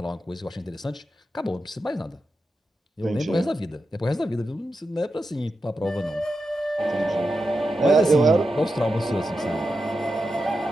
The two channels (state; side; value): normal; both; correlation 0.89